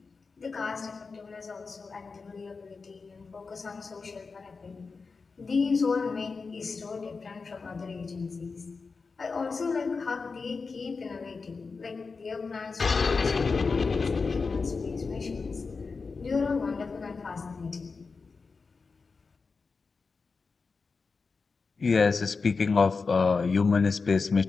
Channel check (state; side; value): quieter; right; 4.5 dB